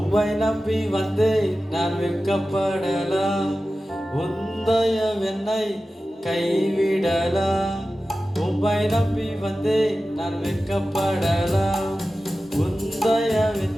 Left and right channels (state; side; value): normal; both; correlation 0.94